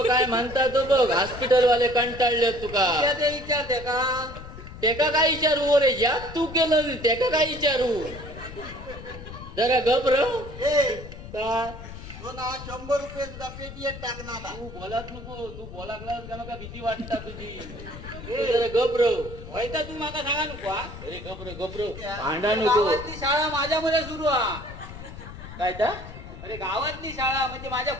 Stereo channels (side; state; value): left; noise; rumble, 13 dB below the sound